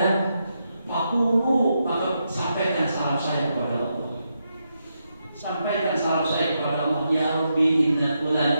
fakulu, maka sampaikan salam saya kepada Allah. Sampaikan salam saya kepada Allah. Ya Rabbi inna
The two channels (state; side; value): inverted; both; correlation -0.83